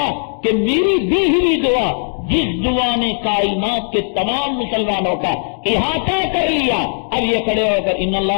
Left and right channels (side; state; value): right; silent; digital silence